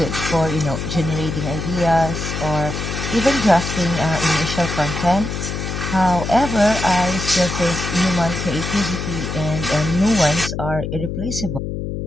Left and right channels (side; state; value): left; noise; hum, 4 dB below the sound